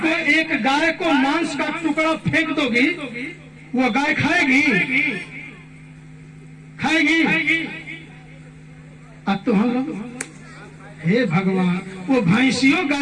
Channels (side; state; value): both; identical; correlation 1.00